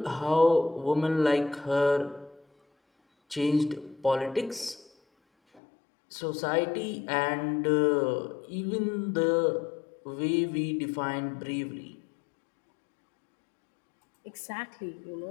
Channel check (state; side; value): drops out; right; at 5.6 s